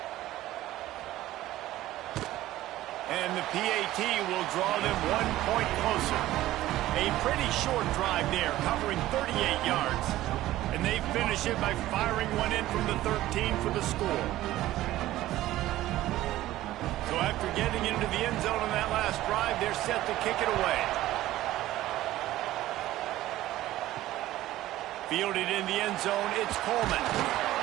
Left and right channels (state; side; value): quieter; left; 15.3 dB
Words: And the PAT will draw them 1 point closer. A pretty short drive there, covering 38 yards. And they finish it by firing one in from the 13 for the score. So after getting into the end zone on that last drive, they're set to kick it away. Fielded in the end zone, it's Coleman.